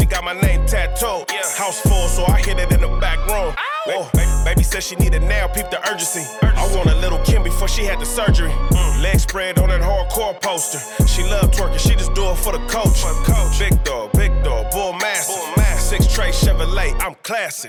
got my name tattooed. House full, so I hit it in the back room. Oh, baby said she needed now, peep the urgency. I want a little Kim before she had the surgery. Leg spread on that hardcore poster. She love twerking, she just do it for the coach. Big dog, bull massive. 6 tray Chevrolet, I'm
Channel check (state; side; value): identical; both; correlation 1.00